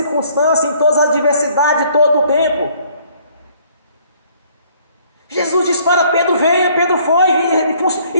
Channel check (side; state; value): both; inverted; correlation -0.61